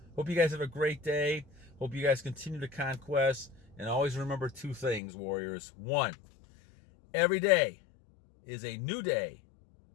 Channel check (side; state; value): right; drops out; at 5.0 s